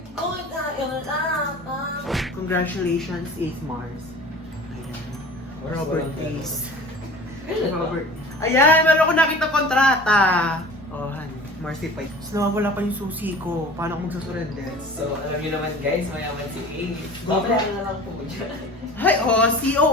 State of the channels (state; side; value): normal; both; correlation 0.41